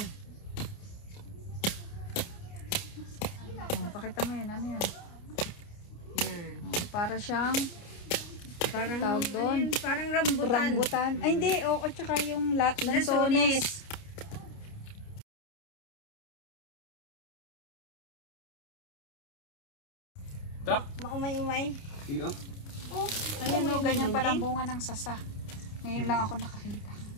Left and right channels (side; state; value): right; late; 29 ms